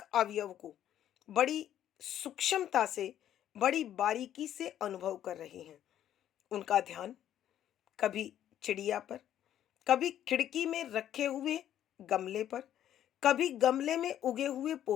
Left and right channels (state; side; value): quieter; right; 11.1 dB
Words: अवयव को बड़ी सूक्ष्मता से, बड़ी बारीकी से अनुभव कर रहे हैं। उनका ध्यान कभी चिड़िया पर, कभी खिड़की में रखे हुए गमले पर, कभी गमले में उगे हुए